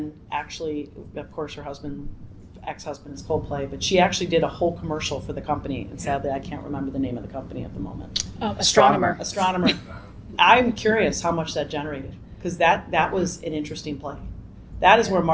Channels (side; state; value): both; identical; correlation 1.00